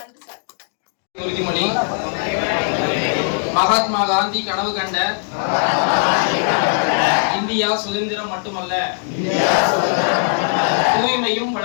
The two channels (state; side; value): silent; right; digital silence